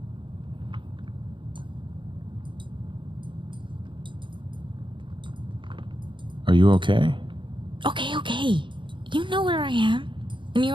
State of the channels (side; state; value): left; late; 0.23 ms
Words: Are you okay? Okay. You know where I am. And you